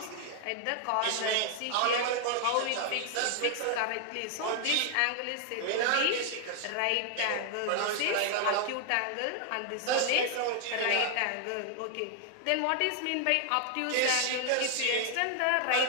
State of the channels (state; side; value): different; both; correlation 0.00